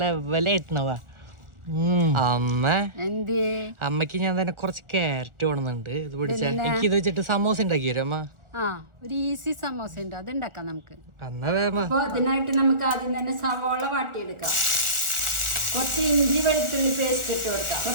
ലെവലായിട്ടുണ്ടവാ. അമ്മക്ക് ഞാൻ തന്നെ കുറച്ച് ക്യാരറ്റ് വേണമെന്നുണ്ട്. ഇത് പിടിച്ച എനിക്ക് ഇത് വെച്ചിട്ട് സമോസ ഉണ്ടാക്കി തരും അമ്മ. ഒരു ഈസി സമോസ ഉണ്ട്, അത് ഉണ്ടാക്കാം നമുക്ക്. അതിനായിട്ട് നമുക്ക് ആദ്യം തന്നെ സവോള വാട്ടിയെടുക്കാം. കുറച്ച് ഇഞ്ചി വെളുത്തുള്ളി പേസ്റ്റ് ഇട്ട് കൊടുക്കാം,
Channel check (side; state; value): left; late; 1.4 ms